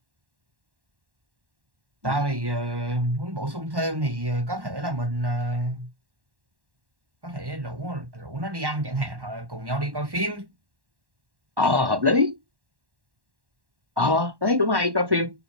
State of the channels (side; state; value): left; late; 1.1 ms